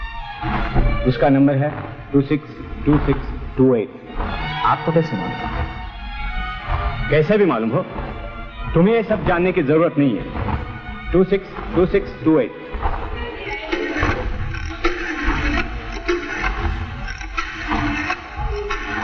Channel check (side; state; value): both; identical; correlation 1.00